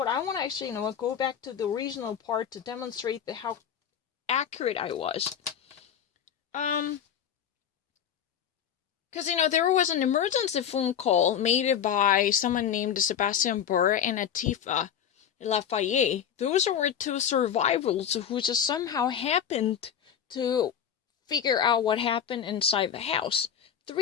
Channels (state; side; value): quieter; right; 8.7 dB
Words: I want to actually, go back to the regional part to demonstrate how accurate I was. Because, there was an emergency phone call made by someone named Sebastian Burr and Atifa Lafayette. Those were two survivors who just somehow happened to figure out what happened inside the house.